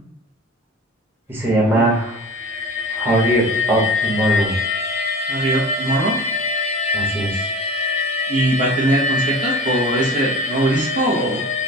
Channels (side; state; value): both; normal; correlation 0.37